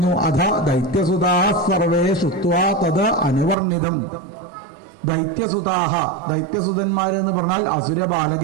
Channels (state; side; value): drops out; left; at 3.6 s